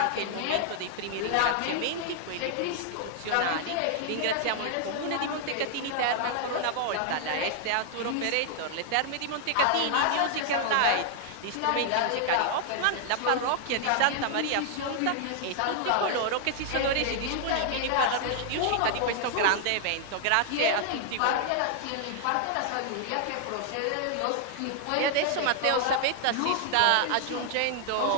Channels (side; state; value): both; different; correlation 0.00